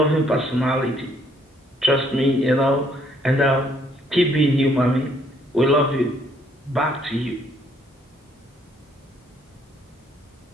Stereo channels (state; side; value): normal; both; correlation 0.66